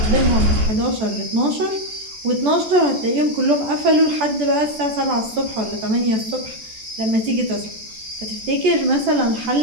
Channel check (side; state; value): left; late; 14 ms